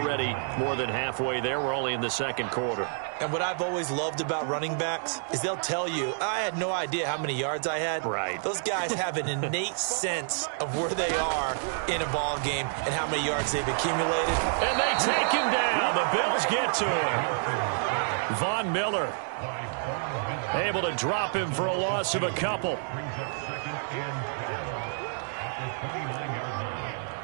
more than halfway there. We're only in the 2nd quarter. And what I've always loved about running backs is they'll tell you, I had no idea how many yards I had. Right. Those guys have an innate sense of where they are in a ball game and how many yards they've accumulated. And they take him down. The Bills get to him. Von Miller able to drop him for a loss of a couple.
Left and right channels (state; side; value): silent; left; digital silence